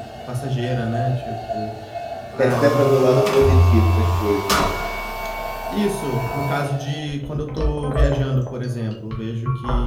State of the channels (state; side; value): identical; both; correlation 1.00